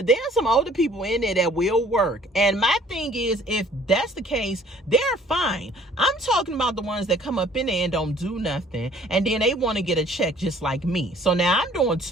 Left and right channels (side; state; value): both; normal; correlation 0.56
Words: there are some older people in there that will work. And my thing is, if that's the case, they're fine. I'm talking about the ones that come up in there and don't do nothing. And then they want to get a check just like me. So now I'm doing